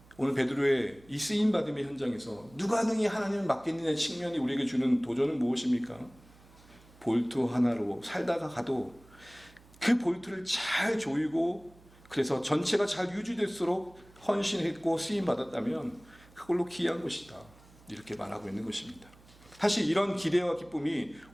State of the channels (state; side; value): noise; right; hum, 25 dB below the sound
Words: 오늘 베드로의 이 쓰임받음의 현장에서 누가 능히 하나님을 맡겠느냐의 측면이 우리에게 주는 도전은 무엇입니까? 볼트 하나로 살다가 가도 그 볼트를 잘 조이고 그래서 전체가 잘 유지될수록 헌신했고 쓰임받았다면 그걸로 귀한 것이다 이렇게 말하고 있는 것입니다. 사실 이런 기대와 기쁨이